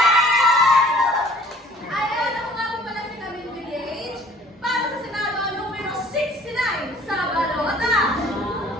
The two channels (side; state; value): both; normal; correlation 0.52